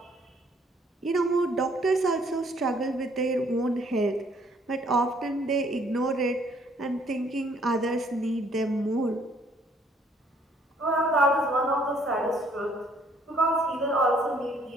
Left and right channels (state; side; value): normal; both; correlation 0.64